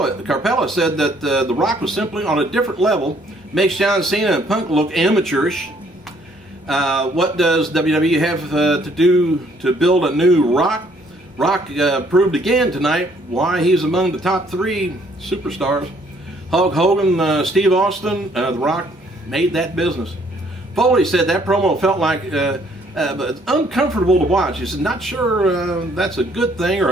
said that The Rock was simply on a different level, makes John Cena and Punk look amateurish. What does WWE have to do to build a new Rock? Rock proved again tonight why he's among the top 3 superstars. Hulk Hogan, Steve Austin, The Rock made that business. Foley said that promo felt like but it's uncomfortable to watch. He said, not sure that's a good thing or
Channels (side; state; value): both; normal; correlation 0.64